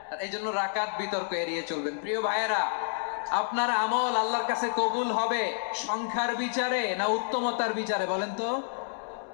এই জন্য রাকাত বিতর্ক এড়িয়ে চলবেন। প্রিয় ভাইয়েরা, আপনার আমল আল্লাহর কাছে কবুল হবে সংখ্যার বিচারে না উত্তমতার বিচারে বলেন তো?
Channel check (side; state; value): right; silent; digital silence